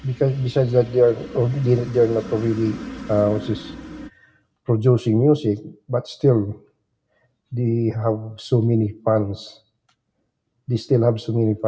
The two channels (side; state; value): both; identical; correlation 1.00